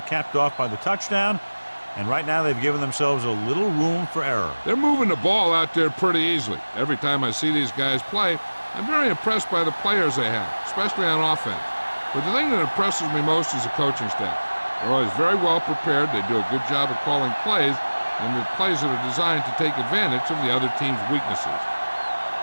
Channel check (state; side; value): inverted; both; correlation -1.00